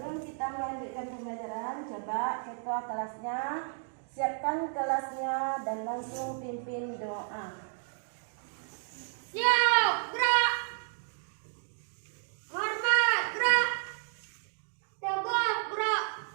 kita melanjutkan pembelajaran, coba ketua kelasnya siapkan kelasnya dan langsung pimpin doa. Siap, gerak. Hormat, gerak. Tegak, gerak.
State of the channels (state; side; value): silent; left; 56 dB below the other